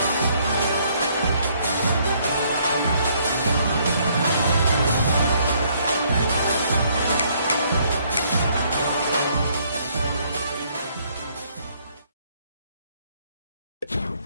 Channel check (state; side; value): inverted; both; correlation -0.66